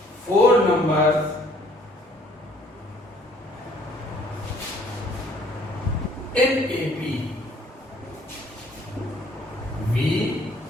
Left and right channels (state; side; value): normal; both; correlation 0.60